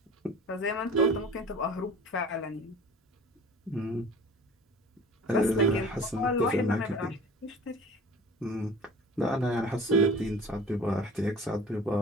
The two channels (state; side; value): normal; both; correlation 0.42